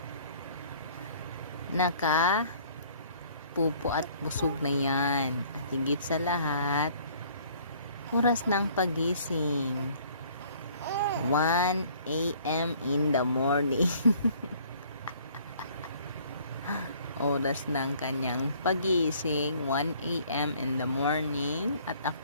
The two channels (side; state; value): both; inverted; correlation -0.57